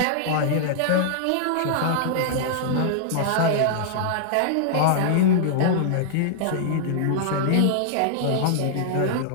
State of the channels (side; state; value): both; different; correlation -0.01